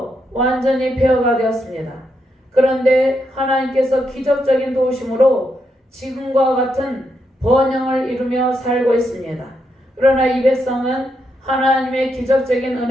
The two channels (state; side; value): normal; both; correlation 0.81